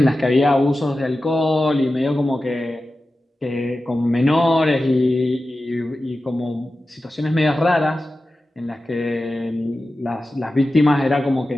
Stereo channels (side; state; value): both; normal; correlation 0.93